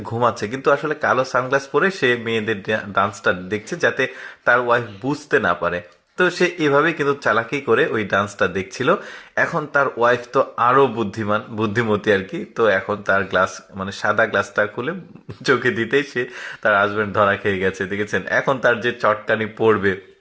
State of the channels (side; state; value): both; identical; correlation 1.00